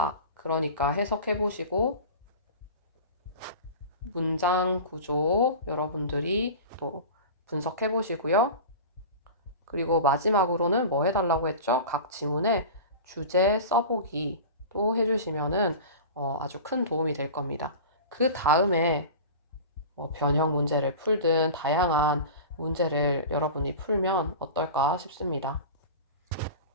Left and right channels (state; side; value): inverted; both; correlation -0.33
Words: 그러니까 해석해 보시고, 문장 구조 여러분들이 또 분석해 보시고요. 그리고 마지막으로는 뭐 해달라고 했죠? 각 지문에 주제 써보기 또 해주시면은 아주 큰 도움이 될 겁니다. 그 다음에 변형 문제를 풀든 다양한 문제를 여러분이 풀면 어떨까 싶습니다.